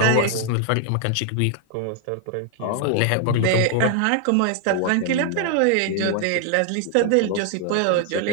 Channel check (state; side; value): different; both; correlation 0.00